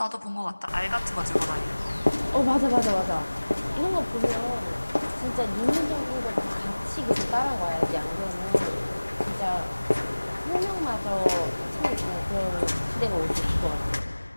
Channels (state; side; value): inverted; both; correlation -1.00